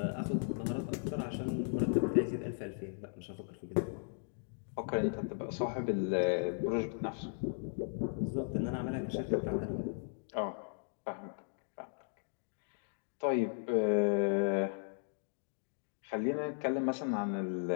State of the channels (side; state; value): right; silent; digital silence